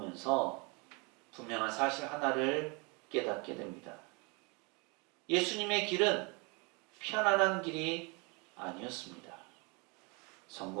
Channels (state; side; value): quieter; left; 30.6 dB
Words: 분명한 사실 하나를 깨닫게 됩니다. 예수님의 길은 편안한 길이 아니었습니다.